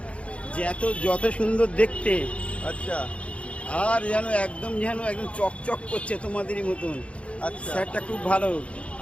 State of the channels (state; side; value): late; right; 0.062 ms